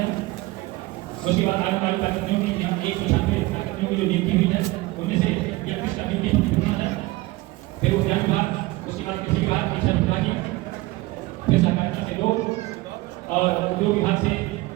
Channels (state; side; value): quieter; left; 20.2 dB